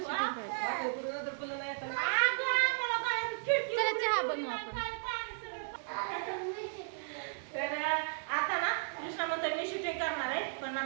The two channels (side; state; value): left; silent; digital silence